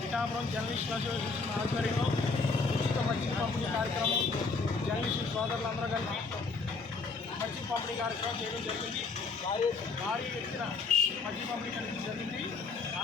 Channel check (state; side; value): quieter; right; 4.3 dB